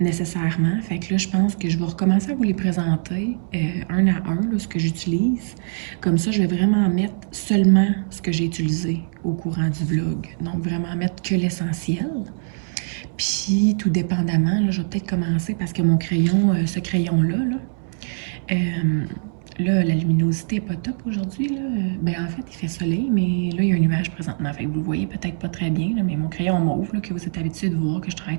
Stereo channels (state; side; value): silent; left; 64 dB below the other